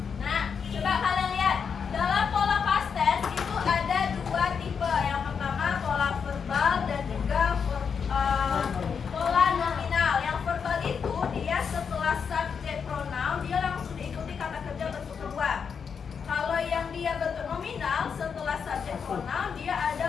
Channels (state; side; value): quieter; right; 6.4 dB